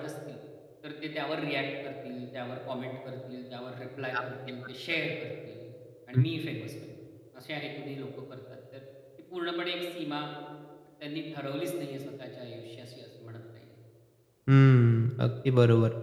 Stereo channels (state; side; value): identical; both; correlation 1.00